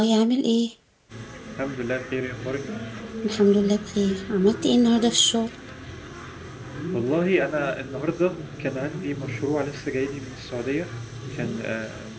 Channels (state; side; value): identical; both; correlation 1.00